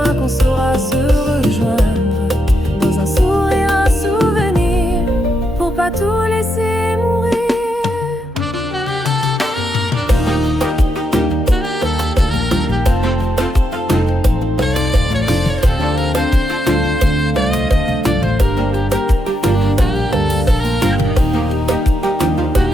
qu'on saura se rejoindre dans un sourire, un souvenir, pour pas tout laisser mourir.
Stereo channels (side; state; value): both; normal; correlation 0.81